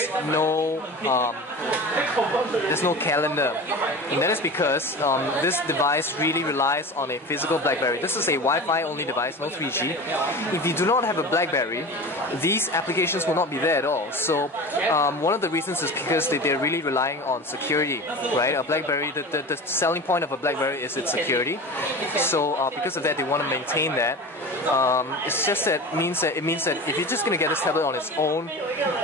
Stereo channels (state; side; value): normal; both; correlation 0.32